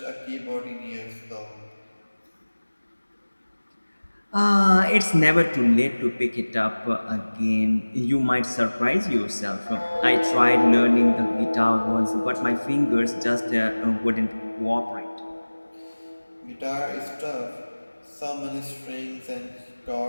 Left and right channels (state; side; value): inverted; both; correlation -1.00